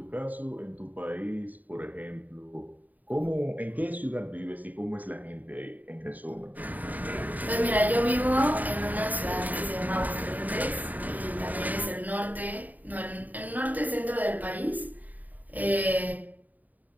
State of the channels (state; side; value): late; left; 0.080 ms